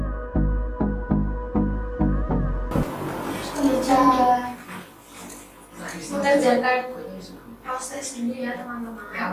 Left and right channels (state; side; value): identical; both; correlation 1.00